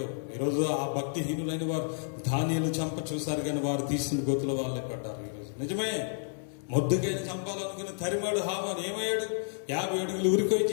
ఈరోజు ఆ భక్తిహీనులైన వారు దానియేలు చంప చూశారు, కానీ వారు తీసిన గోతుల వాళ్ళే పడ్డారు. ఈరోజు నిజమే, మొద్దుకైనా చంపాలనుకుని తరిమాడు హామాను. ఏమయ్యాడు? 50 అడుగులు ఉరికొయ్యి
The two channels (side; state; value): right; silent; digital silence